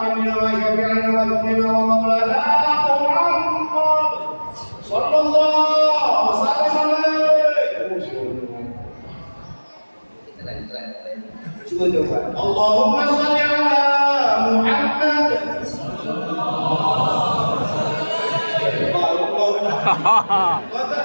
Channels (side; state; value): both; inverted; correlation -1.00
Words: wa syafi'ina wa dhurina wa maulana Muhammad sallallahu alaihi wasallam. Cuba coba. Allahumma salli ala Muhammad. Kau tak